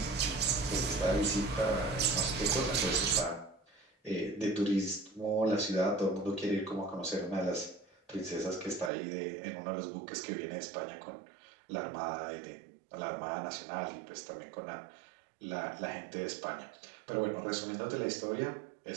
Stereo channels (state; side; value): drops out; left; at 8.9 s